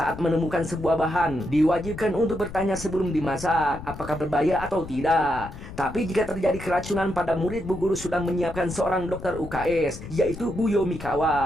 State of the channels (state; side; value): noise; left; rumble, 12 dB below the sound